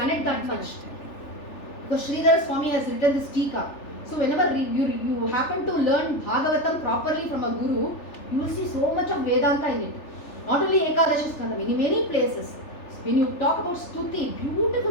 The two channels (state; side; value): late; right; 3.4 ms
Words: that much. Because Sridhara Swami has written this Tika. So whenever you happen to learn Bhagavatam properly from a guru, you will see so much of Vedanta in it. Not only Ekadashi Skandam, in many places. When you talk about Stuti,